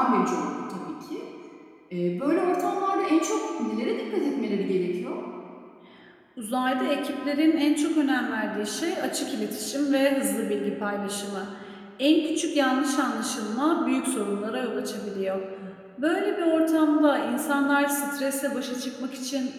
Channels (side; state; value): both; identical; correlation 1.00